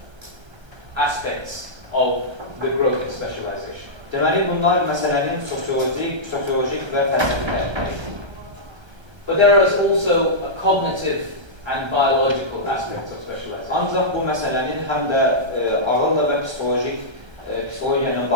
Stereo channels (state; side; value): late; left; 1.3 ms